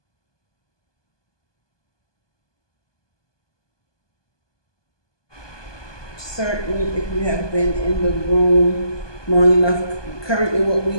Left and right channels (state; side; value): late; right; 1.2 ms